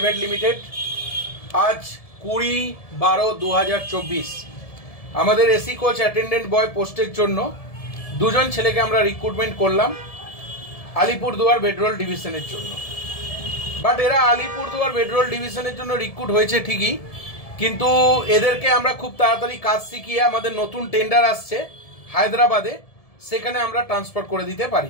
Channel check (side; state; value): right; late; 1.7 ms